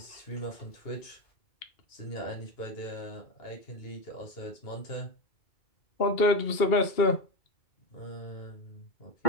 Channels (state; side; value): late; right; 2.7 ms